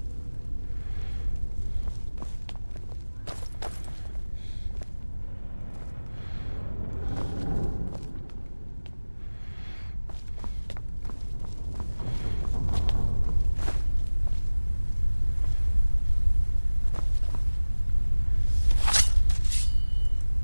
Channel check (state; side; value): inverted; both; correlation -1.00